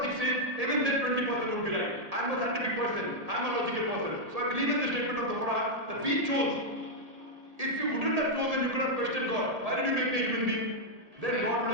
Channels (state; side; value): late; left; 1.8 ms